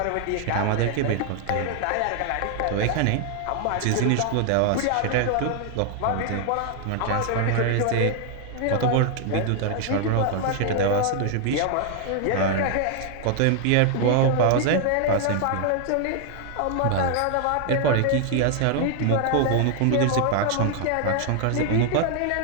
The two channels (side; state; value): both; different; correlation 0.00